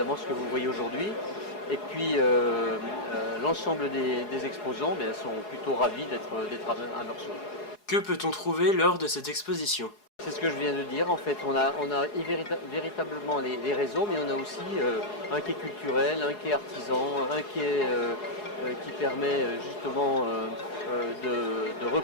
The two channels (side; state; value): right; late; 4.8 ms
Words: ce que vous voyez aujourd'hui. Et puis l'ensemble des exposants sont plutôt ravis d'être à Meursault. Que peut-on trouver lors de cette exposition? C'est ce que je viens de dire. En fait, on a véritablement les réseaux, mais on a aussi un quai culturel, un quai artisan, un quai qui permet justement de